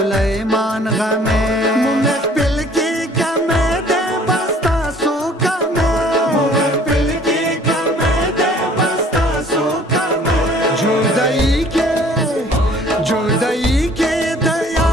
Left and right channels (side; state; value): both; normal; correlation 0.54